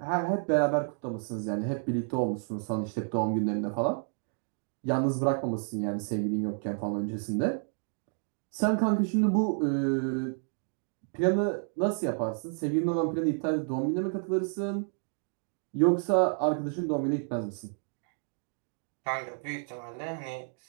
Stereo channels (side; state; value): left; silent; 57 dB below the other